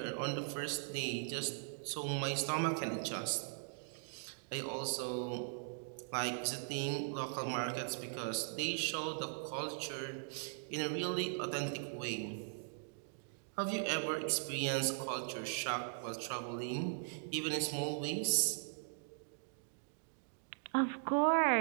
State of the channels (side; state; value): left; silent; digital silence